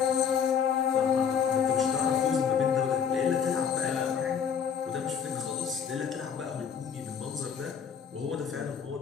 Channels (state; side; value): quieter; right; 7.4 dB